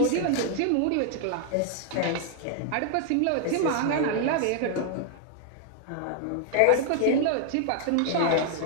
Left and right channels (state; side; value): different; both; correlation 0.00